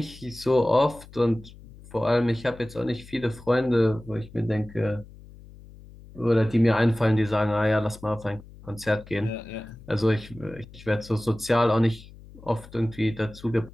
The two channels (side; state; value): left; noise; hum, 20 dB below the sound